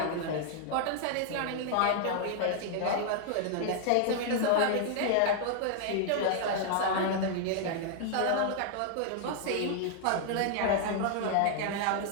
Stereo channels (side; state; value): both; different; correlation -0.01